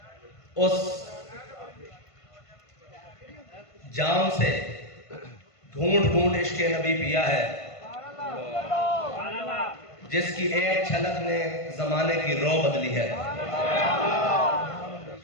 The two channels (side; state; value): right; late; 1.5 ms